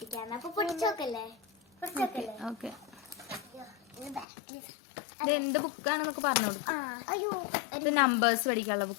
അപ്പൊ പൊട്ടിച്ചോക്കല്ലേ? ഓക്കെ. ഇത് എന്ത് ബുക്കാണെന്നൊക്കെ പറഞ്ഞു കൊടുക്കും. അയ്യോ, ഇത് നമ്പേഴ്സ് പഠിക്കാനുള്ള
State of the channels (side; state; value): right; drops out; at 4.2 s